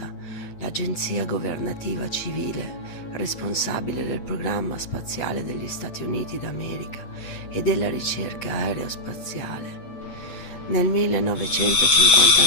l'agenzia governativa civile responsabile del programma spaziale degli Stati Uniti d'America e della ricerca aerospaziale. Nel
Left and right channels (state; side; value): late; right; 8.6 ms